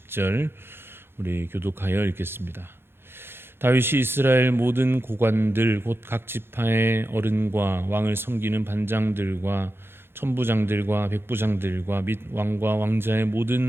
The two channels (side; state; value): left; late; 0.11 ms